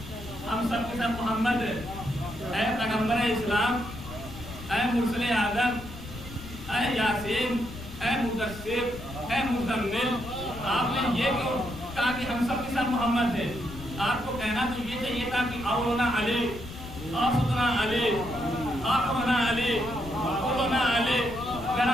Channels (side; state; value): left; noise; rumble, 12 dB below the sound